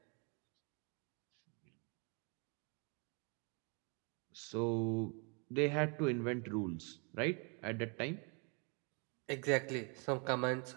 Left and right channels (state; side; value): quieter; left; 35.2 dB